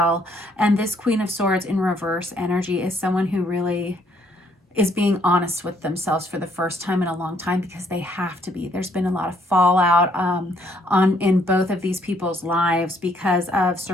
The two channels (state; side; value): normal; both; correlation 0.67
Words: And this Queen of Swords in reverse energy is someone who really is being honest with themselves for the first time in a long time, because they have to be. There's been a lot of fallout in both of these people's lives because of